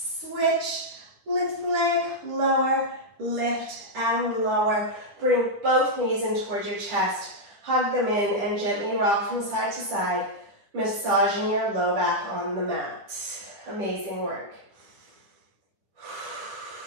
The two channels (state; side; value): late; left; 9.7 ms